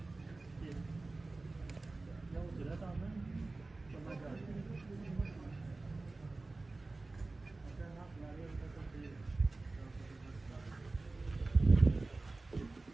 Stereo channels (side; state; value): left; quieter; 3.3 dB